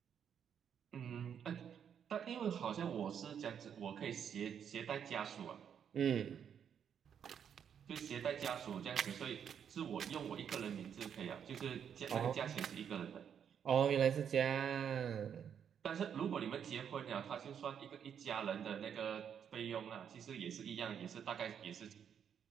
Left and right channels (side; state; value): left; quieter; 8.2 dB